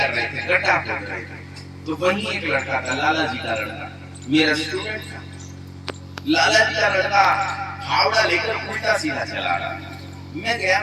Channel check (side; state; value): both; identical; correlation 1.00